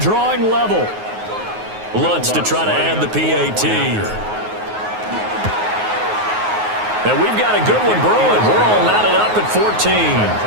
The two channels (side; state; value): left; late; 9.5 ms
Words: level. Lutz to try to add the PAT. And we've got a good one brewing. We're all knotted up at 14. That